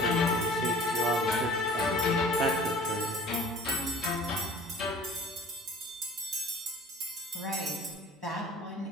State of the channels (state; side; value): normal; both; correlation 0.45